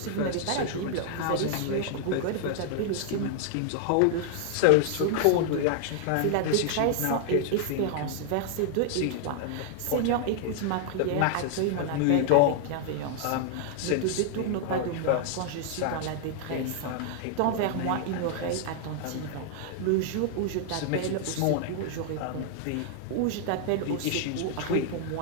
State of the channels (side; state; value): both; different; correlation 0.00